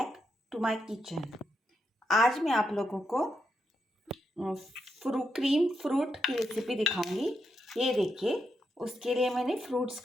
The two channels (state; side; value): normal; both; correlation 0.83